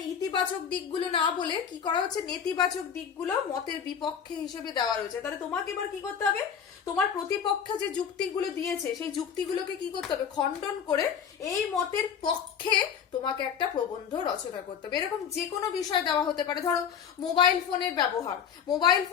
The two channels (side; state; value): right; quieter; 7.7 dB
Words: ইতিবাচক দিকগুলো না বলে কি করা হচ্ছে, নেতিবাচক দিকগুলো মতের বিপক্ষে হিসেবে দেওয়া রয়েছে। তাহলে তোমাকে এবার কি করতে হবে, তোমার প্রতিপক্ষ যে যুক্তিগুলো দিয়েছে সেই যুক্তিগুলোকে কি করতে হবে, খণ্ডন করে এই মতের পক্ষে তোমাকে একটা প্রবন্ধ রচনা করতে হবে। এরকম যে কোনো বিষয় দেওয়া হতে পারে। ধরো মোবাইল